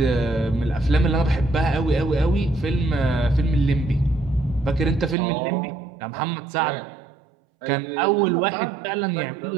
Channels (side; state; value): left; drops out; at 5.2 s